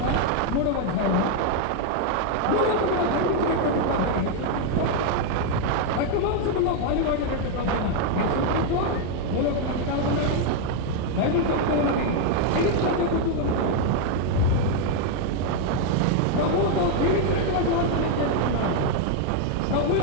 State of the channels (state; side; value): different; both; correlation 0.00